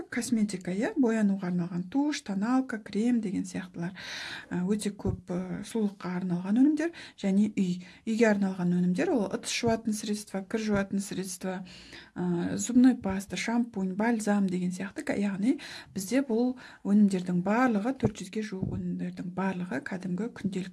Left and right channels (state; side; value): identical; both; correlation 1.00